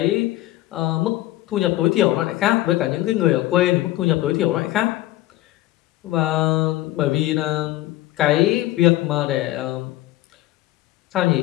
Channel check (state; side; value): quieter; right; 16.2 dB